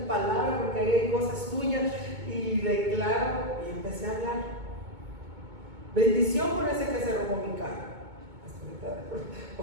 palabra, porque ahí hay cosas tuyas, y declaro, y empecé a hablar. Bendición por ese que se robó mi carro.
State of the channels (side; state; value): left; late; 2.2 ms